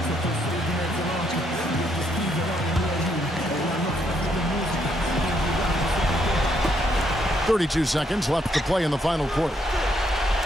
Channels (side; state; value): both; normal; correlation 0.73